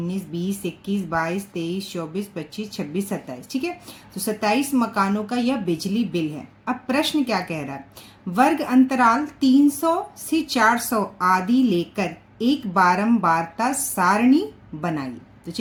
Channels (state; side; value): identical; both; correlation 1.00